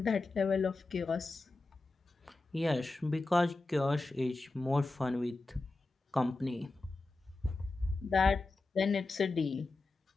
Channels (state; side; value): quieter; right; 3.3 dB